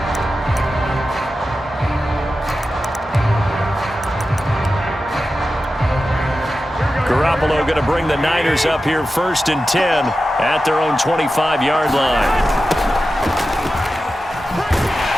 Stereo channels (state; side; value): normal; both; correlation 0.92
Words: Garoppolo going to bring the Niners up here 1st and 10 at their own 25-yard line.